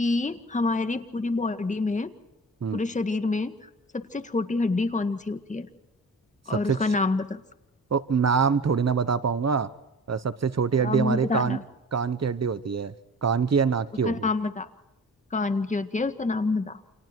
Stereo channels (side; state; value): both; normal; correlation 0.40